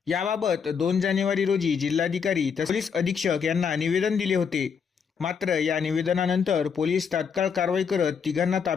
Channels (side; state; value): right; quieter; 6.5 dB